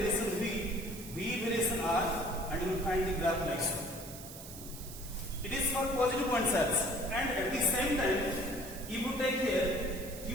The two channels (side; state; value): right; noise; hiss, 13 dB below the sound